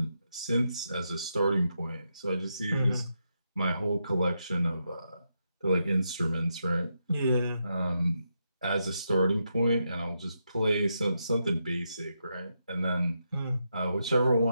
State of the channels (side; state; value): both; inverted; correlation -0.83